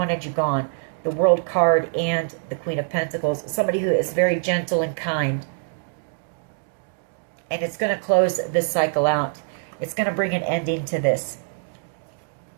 you gone. The World card and the Queen of Pentacles. Somebody who is very gentle and kind. And it's going to close this cycle out. It's going to bring an ending to this.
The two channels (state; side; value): silent; left; digital silence